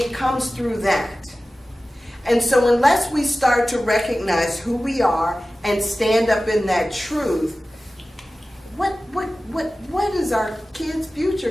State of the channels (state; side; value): normal; both; correlation 0.96